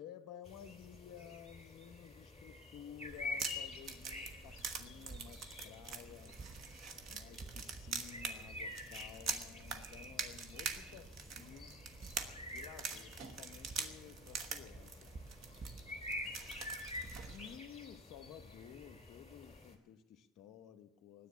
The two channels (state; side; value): normal; both; correlation 0.35